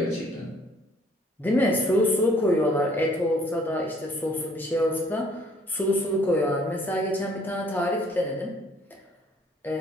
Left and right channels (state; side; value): normal; both; correlation 0.60